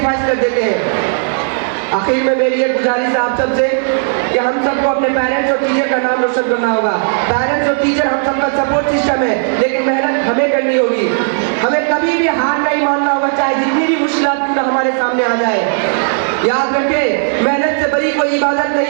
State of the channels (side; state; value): left; silent; digital silence